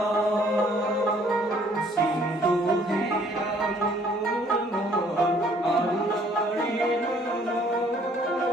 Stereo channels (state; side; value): normal; both; correlation 0.61